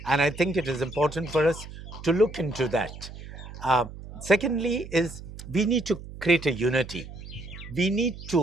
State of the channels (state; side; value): noise; right; hum, 13 dB below the sound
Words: and I think it is important for us to look into that. Uh, Secondly, is we need to create a unity. We need